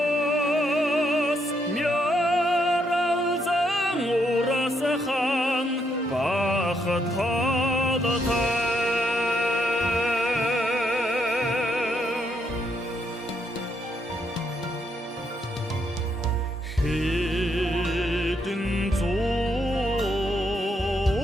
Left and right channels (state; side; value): normal; both; correlation 0.76